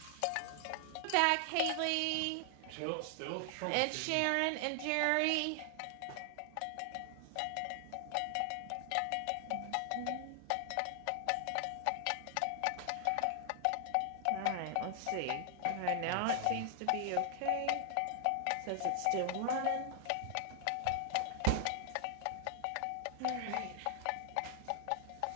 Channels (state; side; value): different; both; correlation 0.00